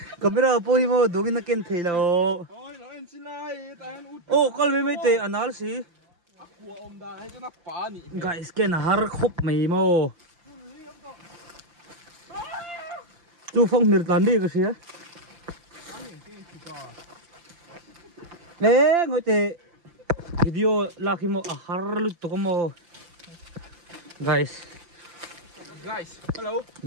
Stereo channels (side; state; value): left; late; 5.8 ms